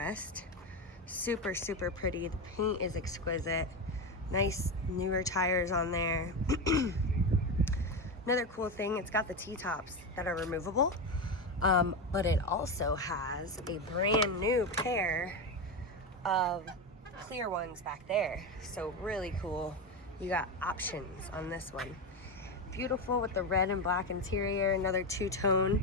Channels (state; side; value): normal; both; correlation 0.15